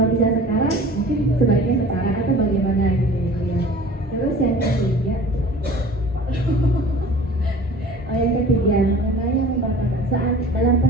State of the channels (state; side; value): normal; both; correlation 0.44